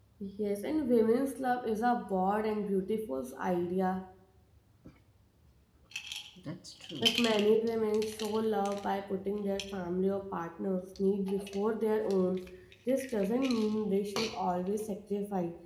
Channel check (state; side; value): identical; both; correlation 1.00